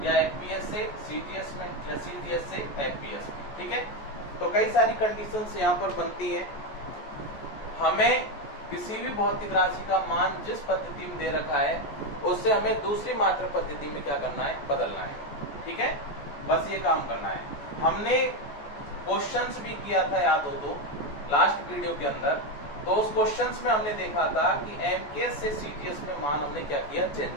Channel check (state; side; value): late; right; 14 ms